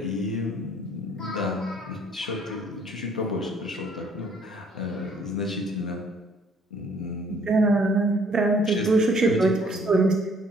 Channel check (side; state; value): both; normal; correlation 0.60